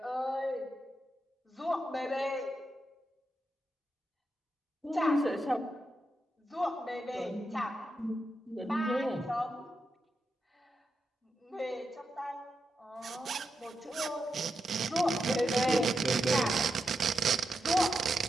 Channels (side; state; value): both; normal; correlation 0.86